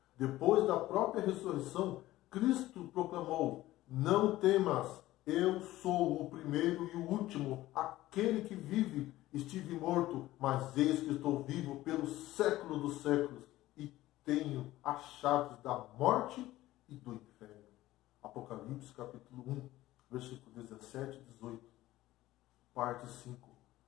Depois da própria ressurreição, Cristo proclamou, não temas, eu sou o primeiro e o último, aquele que vive. Estive morto, mas eis que estou vivo pelo século dos séculos e tenho as chaves da morte e do inferno. Apocalipse capítulo 1, versículo 17 e 18. Parte 5.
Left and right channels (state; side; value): quieter; right; 16.1 dB